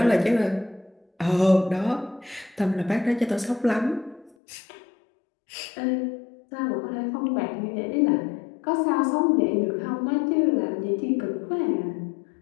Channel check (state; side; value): drops out; right; at 4.4 s